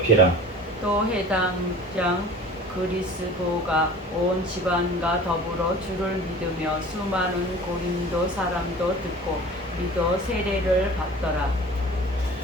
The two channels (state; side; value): normal; both; correlation 0.42